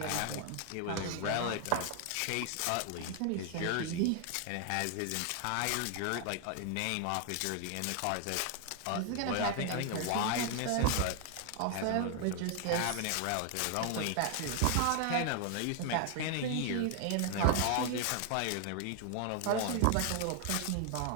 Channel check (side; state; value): both; different; correlation 0.00